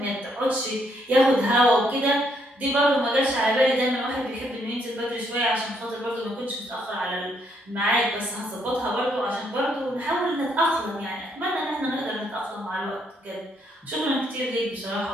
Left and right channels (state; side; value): normal; both; correlation 0.72